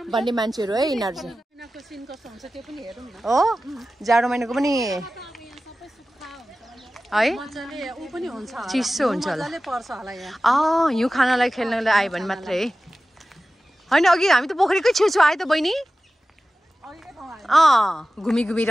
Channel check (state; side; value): normal; both; correlation 0.95